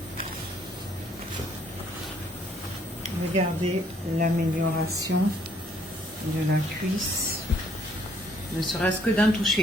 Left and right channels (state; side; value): normal; both; correlation 0.65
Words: Regardez l'amélioration de la cuisse, ne serait-ce que d'un